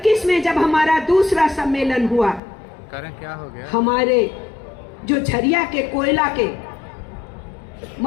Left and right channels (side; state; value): right; drops out; at 2.4 s